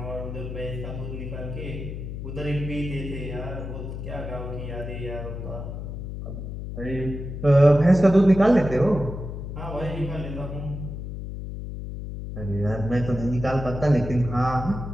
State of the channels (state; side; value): noise; left; hum, 7 dB below the sound